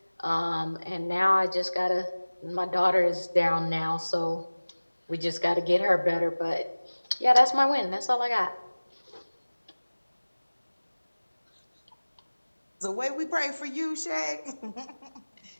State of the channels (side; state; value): both; inverted; correlation -1.00